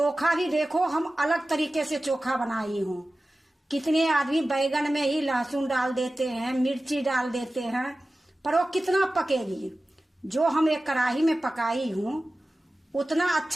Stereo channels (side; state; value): both; normal; correlation 0.96